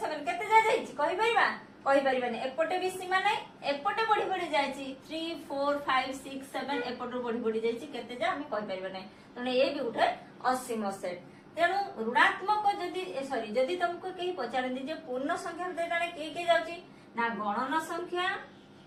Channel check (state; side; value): identical; both; correlation 1.00